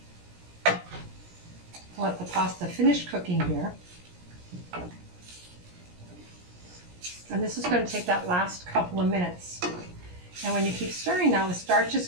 to let the pasta finish cooking here. And this is going to take that last couple of minutes. And when you keep stirring now, the starch is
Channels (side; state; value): left; late; 17 ms